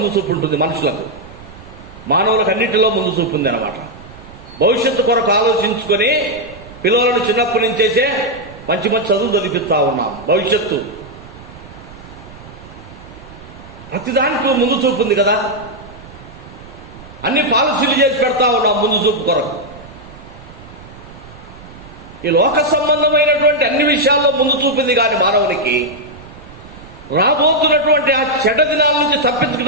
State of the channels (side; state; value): right; noise; rumble, 19 dB below the sound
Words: చూపు ఉంటుంది. మనుషులకు, మానవులకు అన్నిటిలో ముందు చూపు ఉంది అన్నమాట. భవిష్యత్తు కొరకు ఆలోచించుకొని పిల్లలను చిన్నప్పటి నుంచేసే మంచి మంచి చదువులు చదివిస్తా ఉన్నాం. భవిష్యత్తు ప్రతిదానికి ముందు చూపు ఉంది కదా. అన్ని పాలసీలు చేసి పెడతా ఉన్నాం ముందు చూపు కొరకు. ఈ లోక సంబంధమైనటువంటి అన్ని విషయాల్లో ముందు చూపింది కానీ మానవునికి రాబోతున్నటువంటి ఆ చెడ్డ దినాల నుంచి